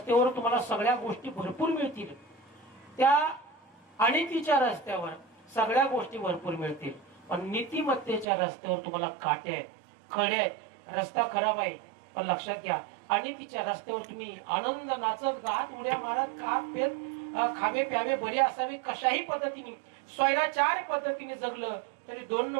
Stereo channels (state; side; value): drops out; left; at 8.2 s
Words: तुम्हाला सगळ्या गोष्टी भरपूर मिळतील. त्या अनितीच्या रस्त्यावर सगळ्या गोष्टी भरपूर मिळतील पण नीतिमत्तेच्या रस्त्यावर तुम्हाला काटे आहेत खडे आहेत रस्ता खराब आहे. पण लक्षात घ्या अनितीच्या रस्त्यावर तुम्ही आनंद नाचत गात उड्या मारत खात पेत खावे प्यावे बरे असावे कशाही पद्धतीने स्वैराचार पद्धतीने जगलं तरी 2